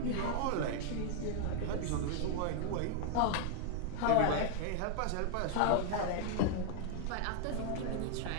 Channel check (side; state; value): both; different; correlation 0.00